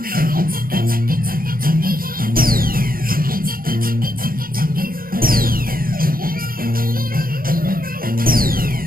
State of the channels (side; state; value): left; late; 0.42 ms